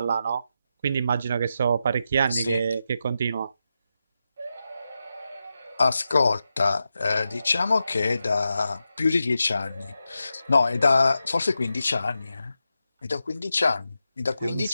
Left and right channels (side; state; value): both; inverted; correlation -0.89